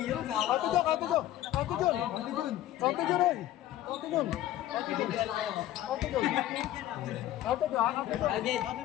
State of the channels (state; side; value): quieter; right; 13.6 dB